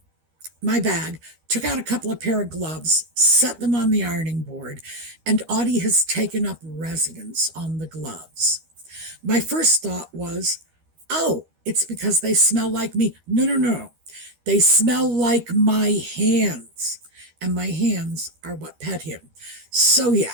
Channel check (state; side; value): late; left; 13 ms